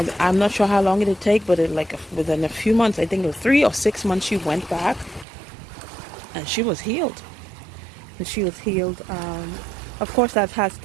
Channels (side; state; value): left; drops out; at 5.2 s